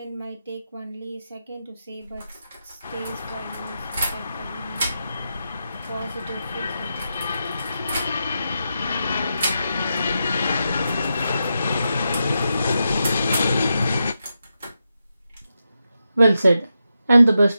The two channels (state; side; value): inverted; both; correlation -0.87